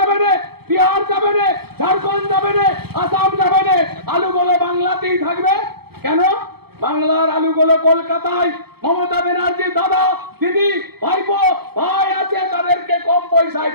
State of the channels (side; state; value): left; late; 0.96 ms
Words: না, বিহার যাবে না, ঝাড়খণ্ড যাবে না, আসাম যাবে না, আলুগুলো বাংলাতেই থাকবে। কেন? বাংলার আলুগুলো কলকাতায় মমতা ব্যানার্জির দাদা দিদি ভাইপো ভাই আছে, তাদেরকে কম পয়সায়